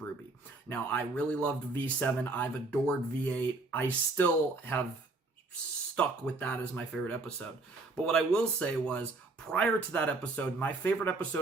Now, I really loved V7. I've adored V8. I still have stuck with that as my favorite episode. But what I will say was, prior to that episode, my favorite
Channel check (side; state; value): left; quieter; 3.4 dB